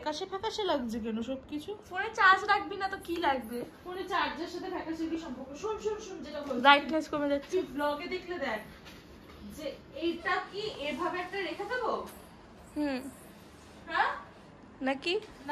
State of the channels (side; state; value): both; identical; correlation 1.00